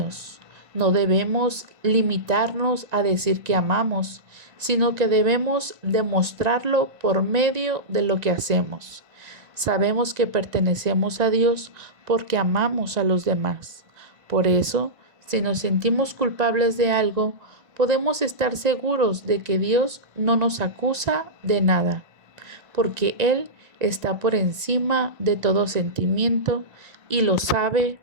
no debemos limitarnos a decir que amamos, sino que debemos demostrarlo por medio de lo que hacemos. Sabemos que pertenecemos a Dios porque amamos a los demás. Por eso, si nos sentimos culpables de algo, podemos estar seguros de que Dios no nos acusa de nada, porque Él está por encima de todo sentimiento y lo sabe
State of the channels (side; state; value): left; late; 1.9 ms